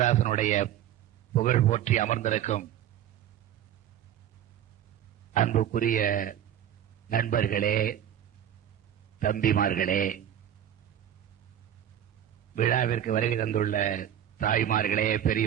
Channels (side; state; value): left; quieter; 10.5 dB